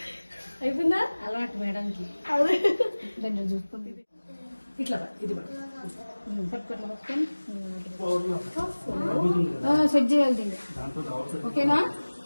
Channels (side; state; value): both; inverted; correlation -1.00